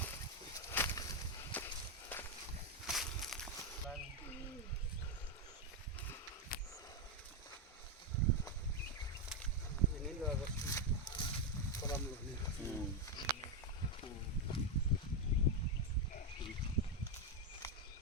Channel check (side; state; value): both; normal; correlation 0.05